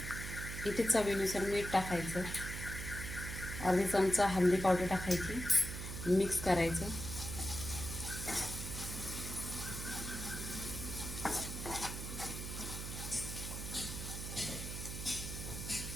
इथे चवीनुसार मीठ टाकायचं, अर्धी चमचा हळदी पावडर टाकायची, मिक्स करायचं।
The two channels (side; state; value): right; noise; hum, 6 dB below the sound